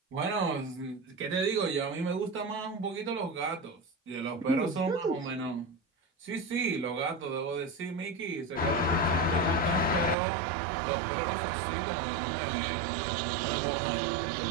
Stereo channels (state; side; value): drops out; left; at 10.2 s